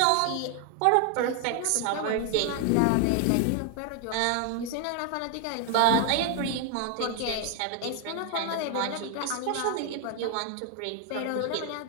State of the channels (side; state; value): both; different; correlation 0.00